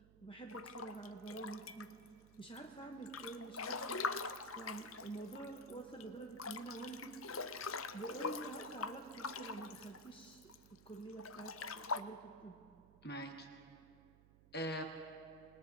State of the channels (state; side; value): noise; right; hum, 21 dB below the sound